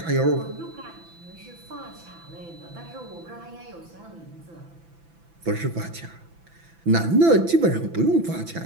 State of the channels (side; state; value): left; late; 5.9 ms